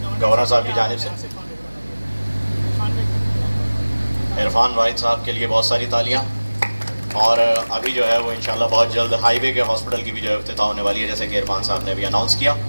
گورنر صاحب کی جانب سے. عرفان واحد صاحب کے لیے بہت ساری تالیاں. اور ابھی جو ہے وہ انشاءاللہ بہت جلد ہائی وے کے ہاسپٹل کی بھی جو ہے افتتاح ہونے والی ہے, جیسے کہ عرفان صاحب نے ابھی اناؤنس کیا.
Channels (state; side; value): inverted; both; correlation -1.00